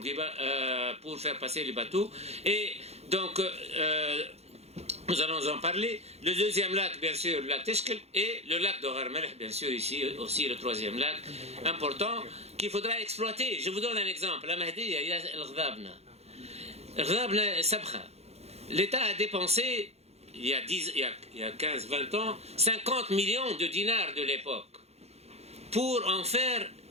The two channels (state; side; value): late; left; 0.31 ms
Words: pour faire passer les bateaux. Et donc, nous allons en parler. Le 2e lac, bien sûr, le lac Teshkel, et le lac de Gharmelech, bien sûr, ici aussi le 3e lac, important, qu'il faudra exploiter. Je vous donne un exemple. La Mahdiya, il y a el-Ghadabna. L'État a dépensé, il y a 15-20 ans, 50 millions de dinars de l'époque pour en faire